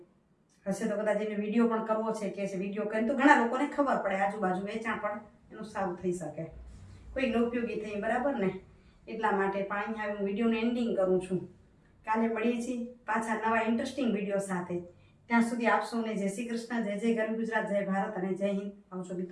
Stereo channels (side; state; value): both; identical; correlation 1.00